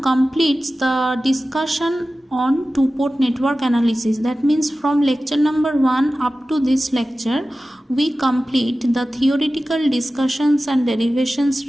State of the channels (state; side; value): normal; both; correlation 0.95